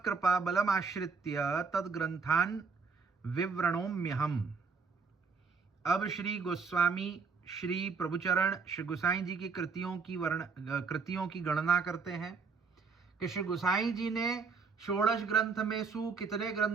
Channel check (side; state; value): left; quieter; 5.0 dB